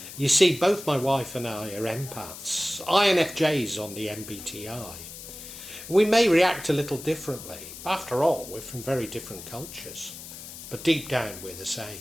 You see, both my wife and I are empaths, INFJs on the MBTI. We may react a little differently. After all, we're from very different cultures. But deep down, we're the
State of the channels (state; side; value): noise; left; hiss, 13 dB below the sound